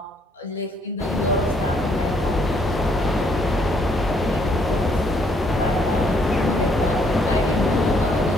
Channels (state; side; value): normal; both; correlation 0.68